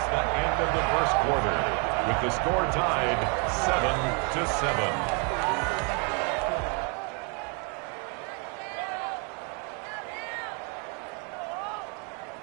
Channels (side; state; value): left; quieter; 34.8 dB